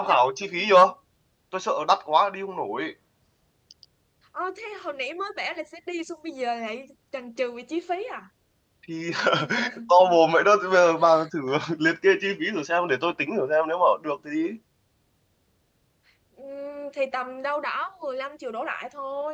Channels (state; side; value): identical; both; correlation 1.00